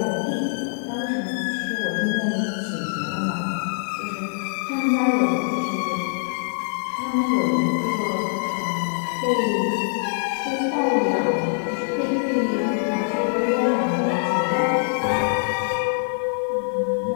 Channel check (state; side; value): silent; right; digital silence